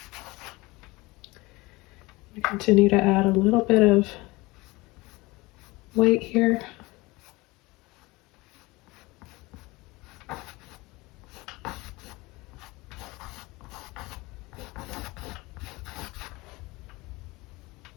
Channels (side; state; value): right; quieter; 22.5 dB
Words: Continue to add a little bit of white here.